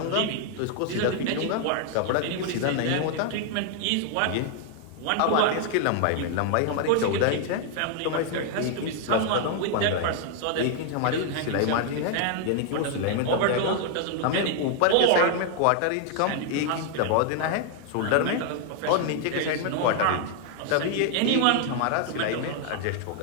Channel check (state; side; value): different; both; correlation 0.00